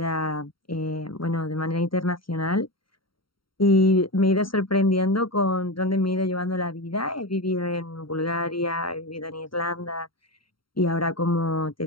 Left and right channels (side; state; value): right; late; 0.73 ms